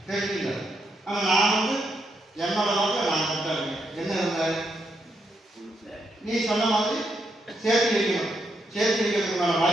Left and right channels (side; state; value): both; normal; correlation 0.80